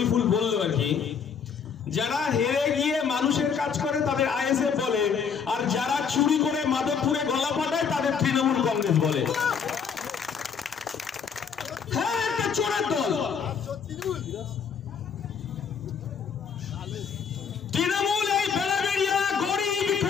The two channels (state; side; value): quieter; right; 6.5 dB